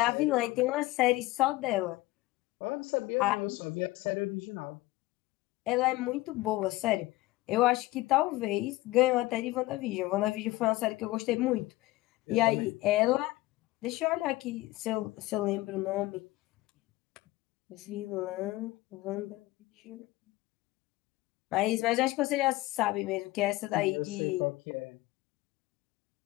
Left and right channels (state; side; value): quieter; right; 19.0 dB